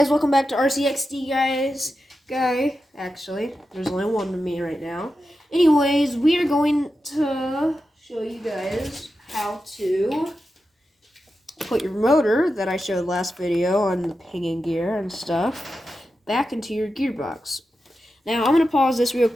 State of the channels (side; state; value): both; normal; correlation 0.90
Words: welcome back to RCXD actually. There's only one of me right now. Anyways, we are going to show you guys how to put your motor that I showed last video on the pinion gear and stuff back into your gearbox. Now, I'm going to pause this real